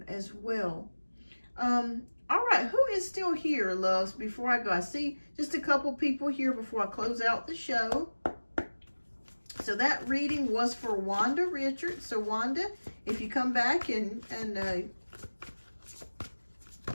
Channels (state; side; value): inverted; both; correlation -1.00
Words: as well. All right, who is still here, loves, before I go? I see just a couple people here before I close out the show. So that reading was for Wanda Richards. So Wanda, if you come back and